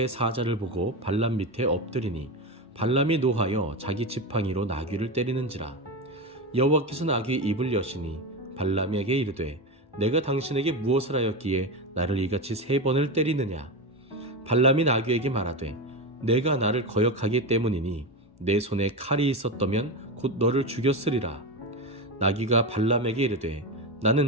사자를 보고 발람 밑에 엎드리니 발람이 노하여 자기 지팡이로 나귀를 때리는지라. 여호와께서 나귀의 입을 여시니 발람에게 이르되 내가 당신에게 무엇을 하였기에 나를 이같이 3번을 때리느냐. 발람이 나귀에게 말하되 내가 나를 거역하기 때문이니 내 손에 칼이 있었다면 곧 너를 죽였으리라. 나귀가 발람에게 이르되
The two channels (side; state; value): both; normal; correlation 0.18